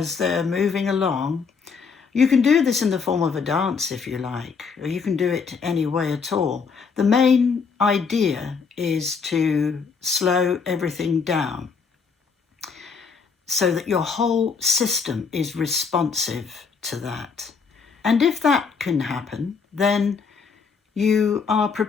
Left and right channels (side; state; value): right; quieter; 5.5 dB